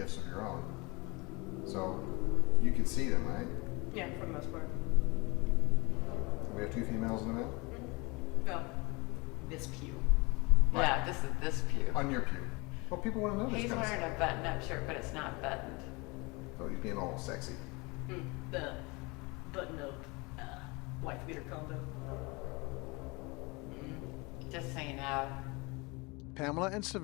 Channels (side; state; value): right; quieter; 26.8 dB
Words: of your own. So you can see them, right? Yeah, for the most part. We have two females in the male? No. This pew. Right. Yeah, this is this pew. On your pew. Well, people want to know this He's kind of wearing stuff. a button-up shirt, but it's not buttoned. So he's being all sexy. The button-up wife beater combo. Just so you know. Pamela and